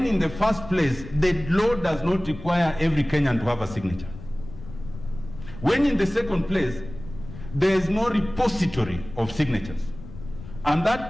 in the first place the law does not require every Kenyan to have a signature. When in the second place, there is no repository of signatures. And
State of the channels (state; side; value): noise; left; rumble, 14 dB below the sound